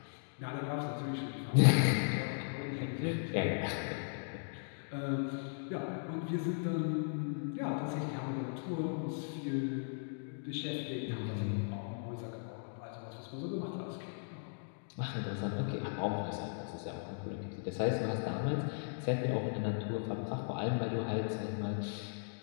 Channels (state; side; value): silent; right; digital silence